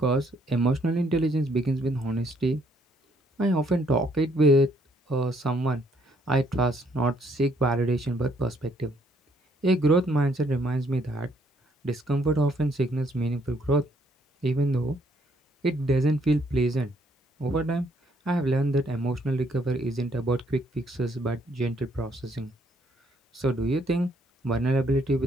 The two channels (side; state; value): both; normal; correlation 0.68